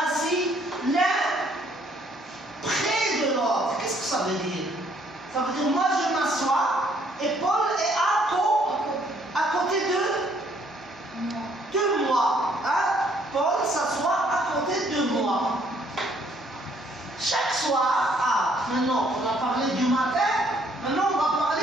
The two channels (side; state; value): both; normal; correlation 0.65